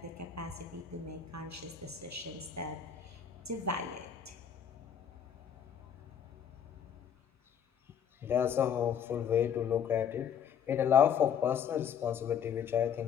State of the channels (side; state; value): right; quieter; 8.1 dB